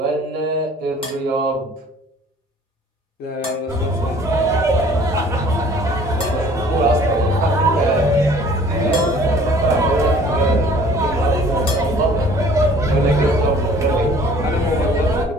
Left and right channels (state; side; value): normal; both; correlation 0.52